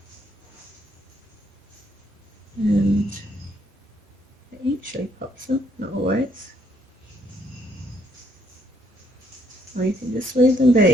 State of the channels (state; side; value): normal; both; correlation 0.70